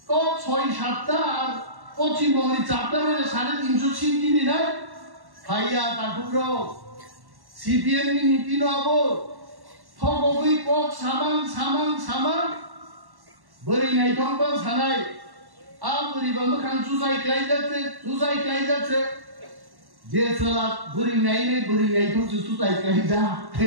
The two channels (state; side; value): late; left; 1.1 ms